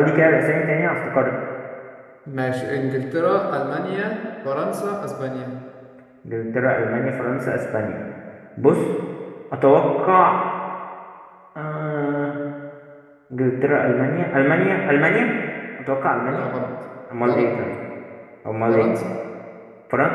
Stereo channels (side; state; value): both; identical; correlation 1.00